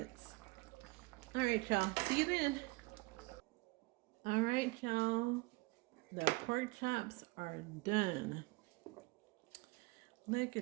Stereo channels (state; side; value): quieter; left; 24.3 dB